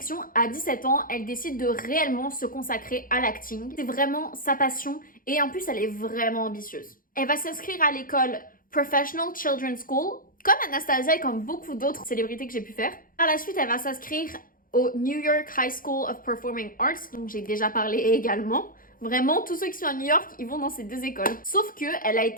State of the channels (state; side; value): late; right; 0.41 ms